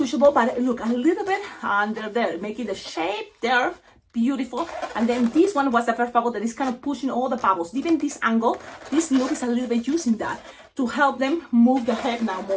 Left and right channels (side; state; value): both; identical; correlation 1.00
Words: but look, a little bit under there, making the shape there beautiful. And then this one was the first bubble that is kind of pushing all the bubbles. Even this angle, this look is a little bit using that to help them move the head now